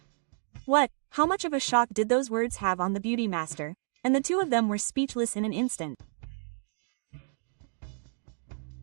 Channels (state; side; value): silent; left; digital silence